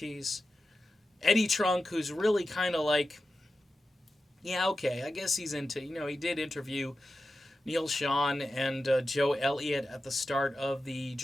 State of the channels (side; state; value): both; normal; correlation 0.92